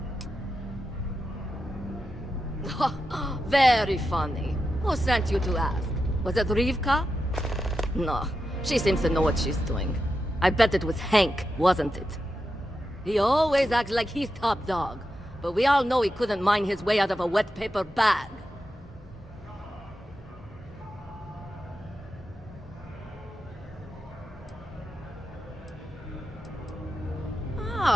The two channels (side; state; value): both; normal; correlation 0.89